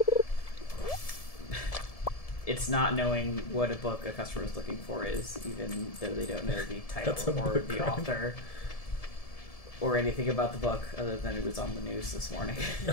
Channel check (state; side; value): late; right; 1.7 ms